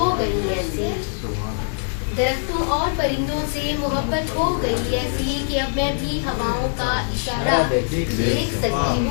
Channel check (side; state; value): right; silent; digital silence